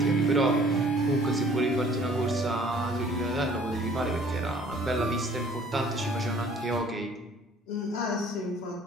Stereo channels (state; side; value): normal; both; correlation 0.55